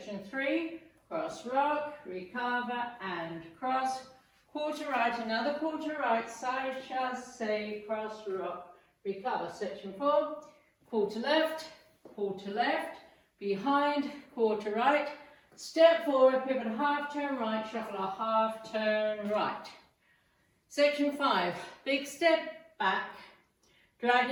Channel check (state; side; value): identical; both; correlation 1.00